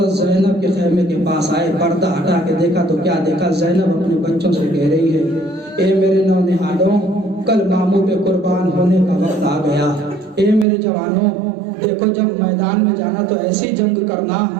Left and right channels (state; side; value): drops out; left; at 10.7 s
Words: زینب کے خیمے کے پاس آئے، پردہ ہٹا کے دیکھا تو کیا دیکھا؟ زینب اپنے بچوں سے کہہ رہی ہے، اے میرے نونہالوں، کل ماموں پہ قربان ہونے کا وقت آ گیا۔ اے میرے جوانوں، دیکھو جب میدان میں جانا تو ایسی جنگ کرنا